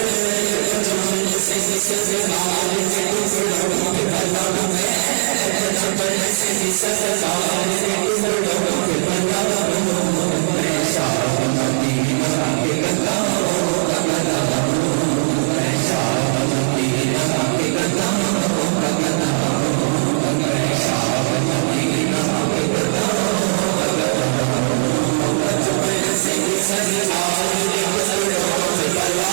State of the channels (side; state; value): left; silent; 67 dB below the other